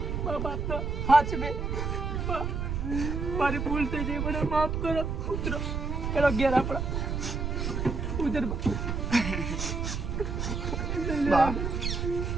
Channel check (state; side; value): noise; right; rumble, 2 dB below the sound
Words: બાપનો હાથ બે મારી ભૂલ થઈ ગઈ મને માફ કરો ઉતરો પેલો ઘેર આપણા ઉધર બા